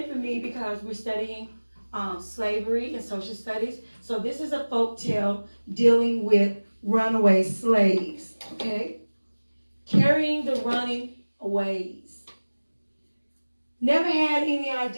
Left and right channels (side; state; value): both; inverted; correlation -1.00